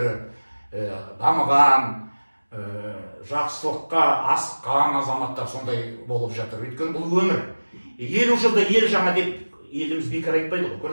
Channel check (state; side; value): inverted; both; correlation -1.00